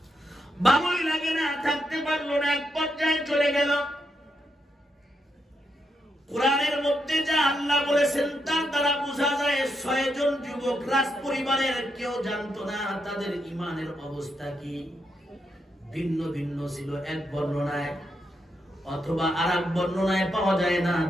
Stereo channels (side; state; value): both; normal; correlation 0.82